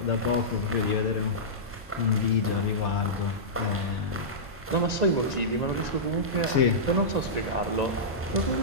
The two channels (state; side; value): normal; both; correlation -0.15